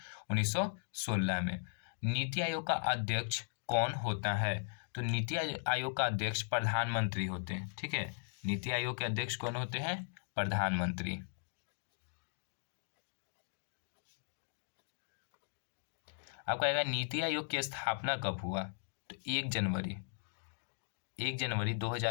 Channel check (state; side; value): silent; right; digital silence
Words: 1916 में। नीति आयोग का अध्यक्ष कौन होता है? तो नीति आयोग का अध्यक्ष प्रधानमंत्री होते हैं। ठीक है, नीति आयोग के अध्यक्ष कौन होते हैं? प्रधानमंत्री। आपका आएगा नीति आयोग की स्थापना कब हुआ? तो 1 जनवरी